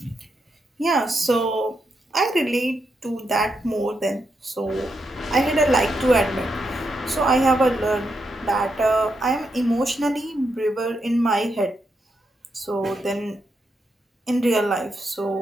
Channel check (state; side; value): normal; both; correlation 0.82